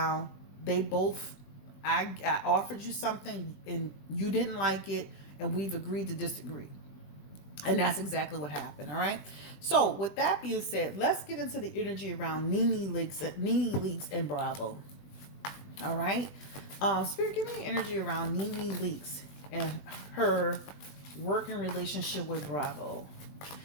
They both, I offered you something and you didn't like it, and we've agreed to disagree. And that's exactly what happened, all right? So, with that being said, let's get into the energy around Nene Leaks and Bravo. All right? Spirit, give me energy around Nene Leaks and her working relationship with Bravo.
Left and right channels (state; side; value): late; right; 21 ms